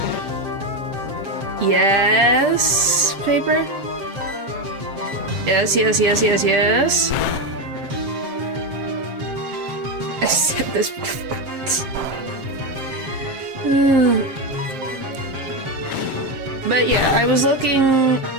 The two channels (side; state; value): left; late; 7.5 ms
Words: Yes, paper. Yes, yes, yes, yes, yes. I said this before. But yeah, I was looking